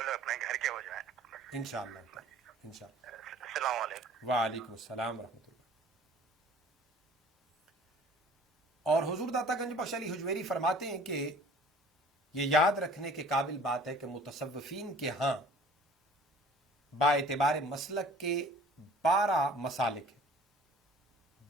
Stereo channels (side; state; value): both; normal; correlation 0.50